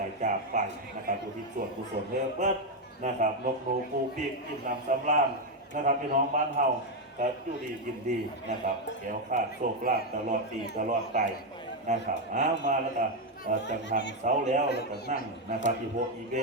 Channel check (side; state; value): both; normal; correlation 0.05